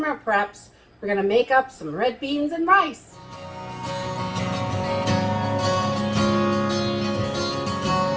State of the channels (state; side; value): identical; both; correlation 1.00